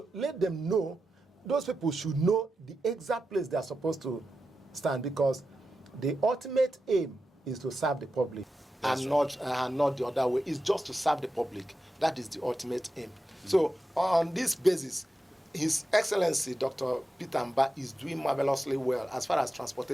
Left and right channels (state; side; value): normal; both; correlation 0.90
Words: let them know, those people should know the exact place they are supposed to stand, because the ultimate aim is to serve the public. That's and not the other way. It's just to serve the public. That is the ultimate aim. So on this basis, His Excellency Dr. Peter Mbah is doing marvelously well as far as